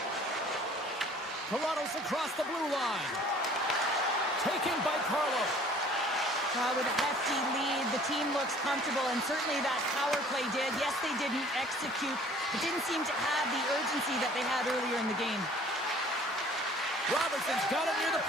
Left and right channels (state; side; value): normal; both; correlation 0.52